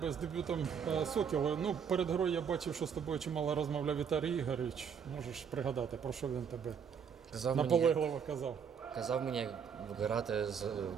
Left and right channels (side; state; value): left; quieter; 7.1 dB